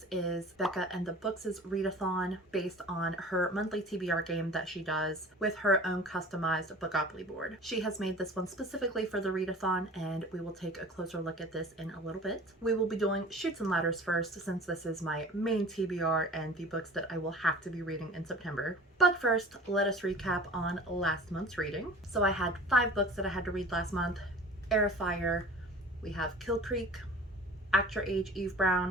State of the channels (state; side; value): normal; both; correlation 0.42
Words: is Becca and the Books' readathon based on her monthly TBR game that she does with her own customized Bookopoly board. She has made this one specifically for the readathon, and we will take a closer look at this in a little bit. We will be doing Chutes and Ladders first, since this is my main TBR and the books that I will have to be reading in September. But first, let us recap on last month's reading. So I had 5 books that I had to read last month. Heir of Fire, we have Kill Creek, Act Your Age, Eve